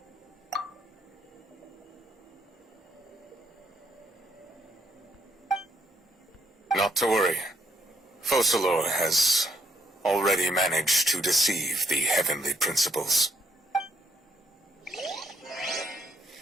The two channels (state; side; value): normal; both; correlation 0.72